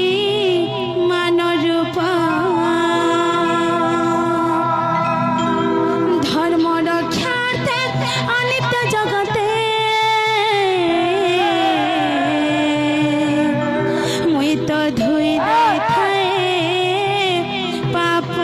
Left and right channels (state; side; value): identical; both; correlation 1.00